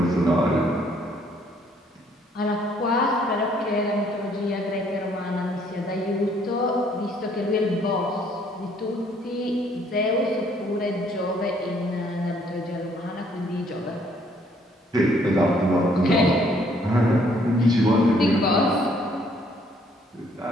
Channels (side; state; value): both; normal; correlation 0.65